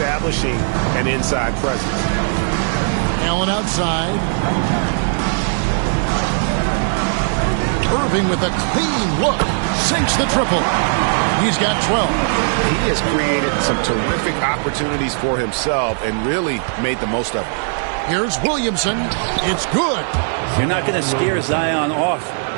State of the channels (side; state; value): left; silent; 67 dB below the other